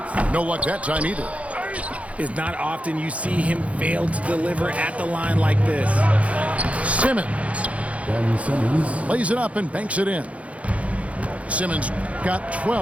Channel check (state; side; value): late; left; 0.065 ms